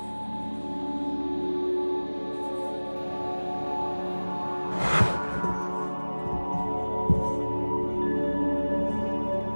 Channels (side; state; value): both; inverted; correlation -1.00